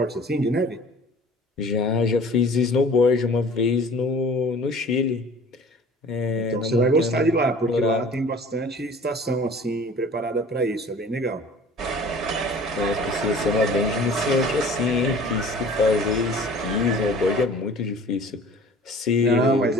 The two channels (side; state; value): both; normal; correlation 0.46